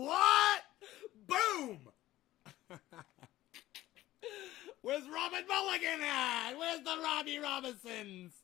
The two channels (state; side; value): quieter; right; 15.6 dB